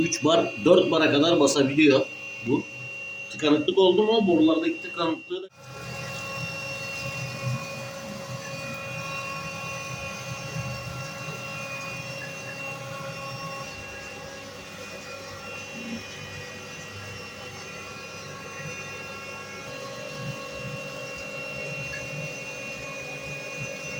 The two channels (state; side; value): identical; both; correlation 1.00